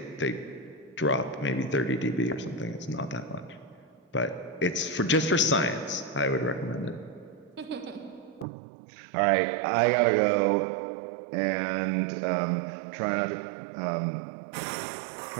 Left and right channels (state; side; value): drops out; left; at 8.5 s